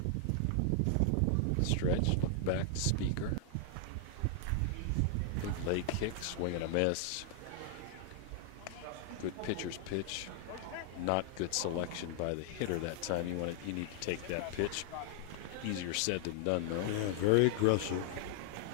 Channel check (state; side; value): different; both; correlation 0.00